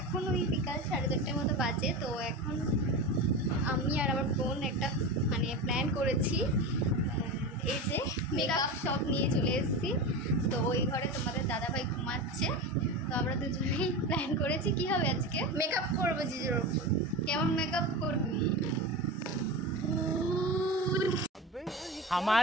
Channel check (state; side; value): normal; both; correlation 0.25